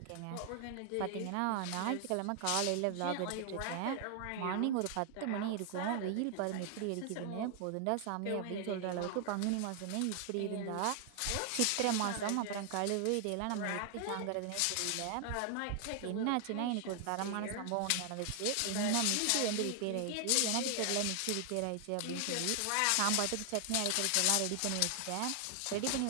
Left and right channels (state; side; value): different; both; correlation 0.00